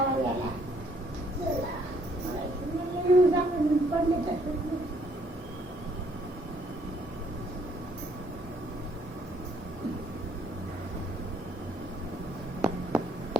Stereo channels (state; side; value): normal; both; correlation 0.66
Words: आला पडले तसं.